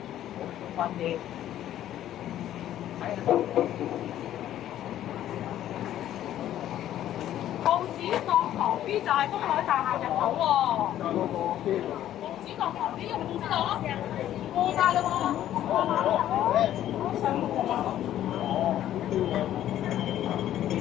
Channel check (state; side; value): quieter; right; 12.1 dB